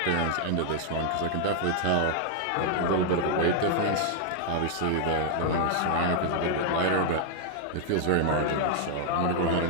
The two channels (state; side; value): different; both; correlation -0.01